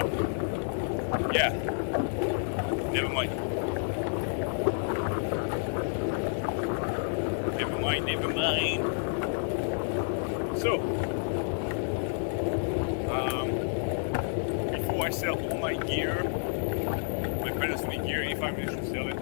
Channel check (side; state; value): right; silent; digital silence